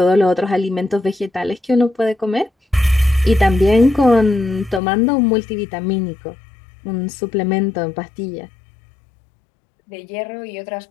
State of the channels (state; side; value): drops out; right; at 4.8 s